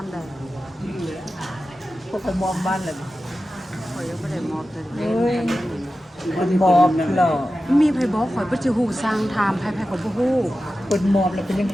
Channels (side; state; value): both; normal; correlation 0.93